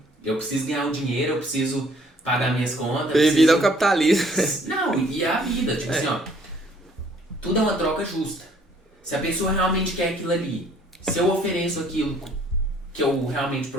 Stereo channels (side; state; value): both; normal; correlation 0.60